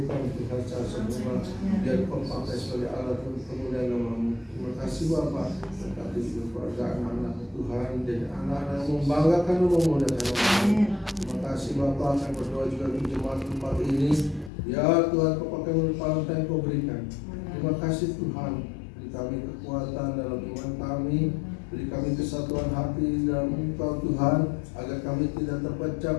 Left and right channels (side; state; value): right; drops out; at 14.5 s